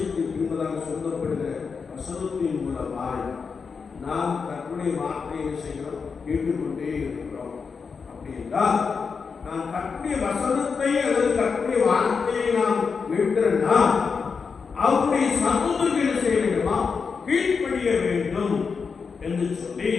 பின்பதாக சொல்லப்படுகிற வசனத்தின் மூலமாய் நாம் கர்த்தருடைய வார்த்தையை செய்கிறோம், கேட்டுக்கொண்டே இருக்கிறோம். அப்படி என்றால் நாம் கர்த்தருடைய வசனத்தை அல்லது கர்த்தருடைய வார்த்தையை நாம் கேட்கிறோம்னா அவருடைய சத்தத்துக்கு என்ன செய்ய வேண்டுமா? கீழ்ப்படிய வேண்டும் என்று சொல்லி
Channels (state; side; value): quieter; right; 5.4 dB